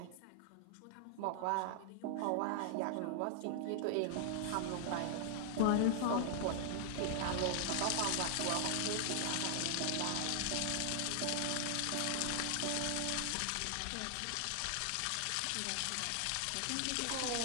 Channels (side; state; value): both; different; correlation 0.00